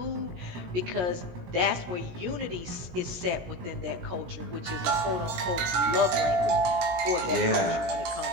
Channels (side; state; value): left; late; 17 ms